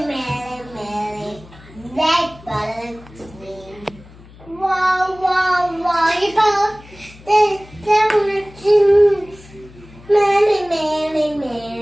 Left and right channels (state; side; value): noise; left; hum, 22 dB below the sound